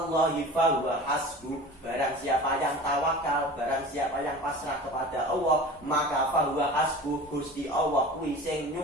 fa huwa hasbuh. Barang siapa yang tawakal, barang siapa yang pasrah kepada Allah, maka fa huwa hasbuh, Gusti Allah kuwi sing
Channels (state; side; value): normal; both; correlation 0.37